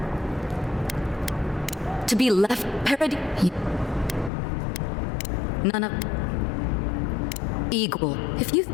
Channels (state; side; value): drops out; right; at 4.3 s